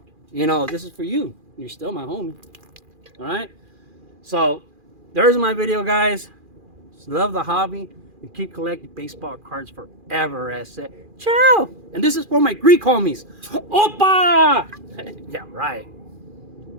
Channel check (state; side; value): late; left; 2.4 ms